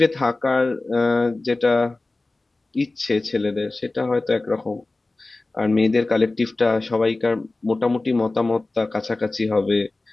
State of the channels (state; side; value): quieter; right; 3.1 dB